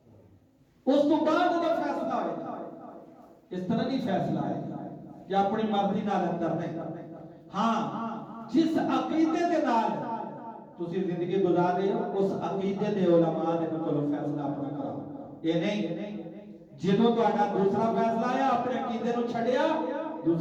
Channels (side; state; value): both; identical; correlation 1.00